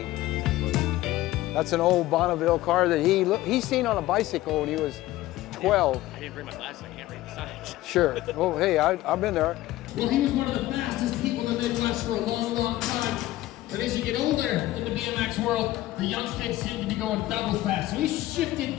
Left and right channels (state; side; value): quieter; right; 16.0 dB